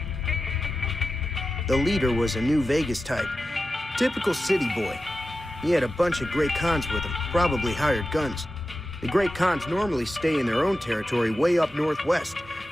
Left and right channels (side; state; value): both; normal; correlation 0.92